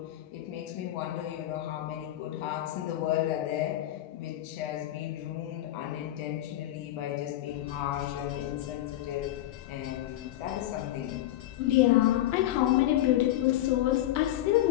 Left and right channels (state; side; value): quieter; right; 14.2 dB